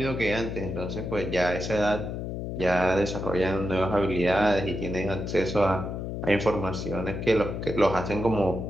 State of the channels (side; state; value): left; noise; hum, 5 dB below the sound